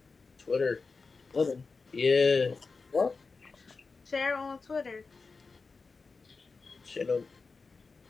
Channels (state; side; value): quieter; right; 4.3 dB